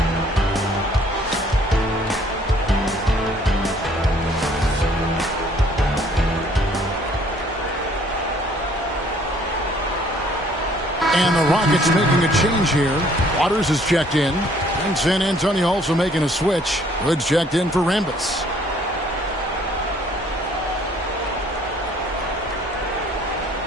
And the Rockets making a change here. Waters is checked in. And San Antonio also making a switch. Hood's checked in for Rambis.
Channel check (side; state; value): both; normal; correlation 0.60